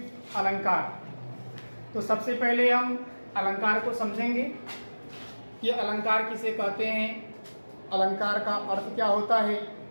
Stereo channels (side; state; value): both; inverted; correlation -1.00